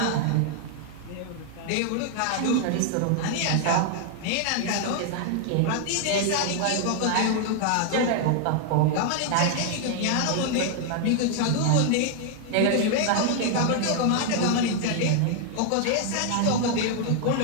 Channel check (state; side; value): different; both; correlation 0.00